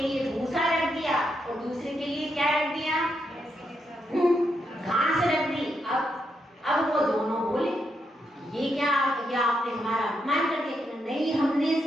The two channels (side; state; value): both; normal; correlation 0.81